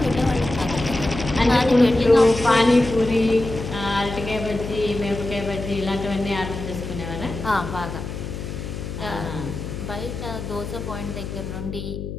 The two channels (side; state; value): left; noise; hum, 7 dB below the sound